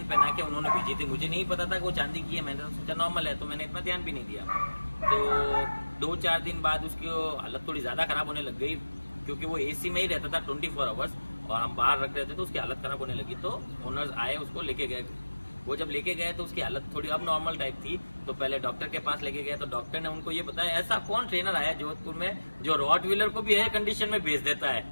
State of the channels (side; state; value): both; inverted; correlation -1.00